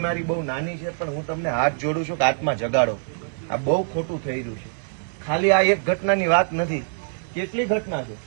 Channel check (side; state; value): left; silent; digital silence